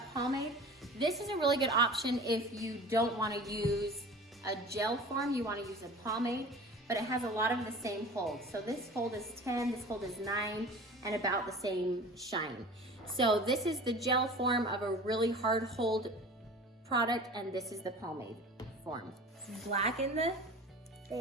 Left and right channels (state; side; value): normal; both; correlation 0.39